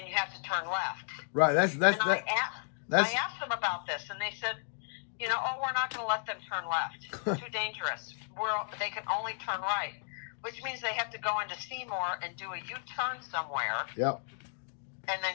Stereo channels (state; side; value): silent; right; digital silence